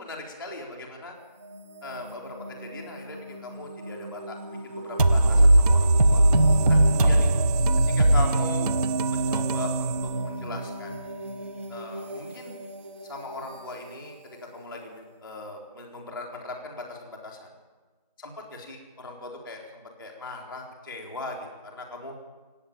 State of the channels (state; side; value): inverted; both; correlation -0.86